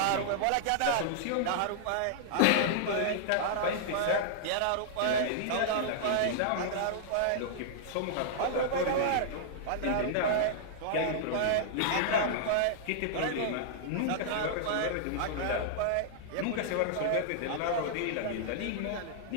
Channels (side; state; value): both; different; correlation -0.01